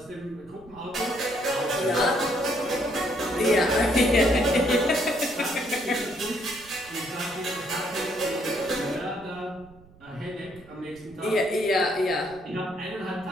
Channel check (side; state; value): right; noise; rumble, 24 dB below the sound